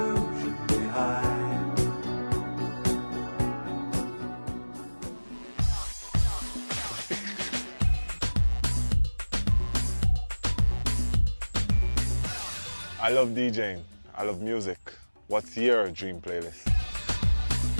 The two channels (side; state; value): both; inverted; correlation -1.00